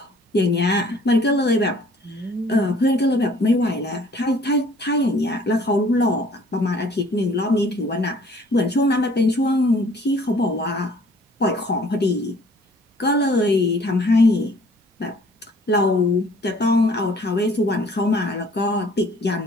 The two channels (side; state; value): both; normal; correlation 0.56